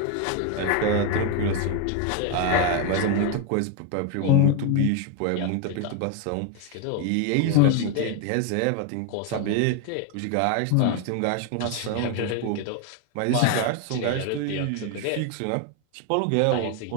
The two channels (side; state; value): both; different; correlation 0.01